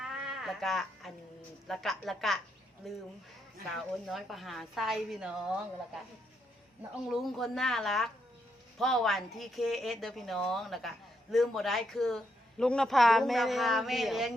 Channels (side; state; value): both; normal; correlation 0.78